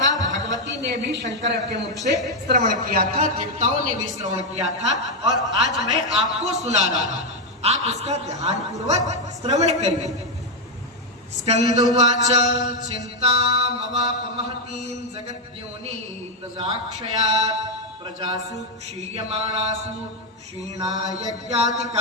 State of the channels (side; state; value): both; normal; correlation 0.02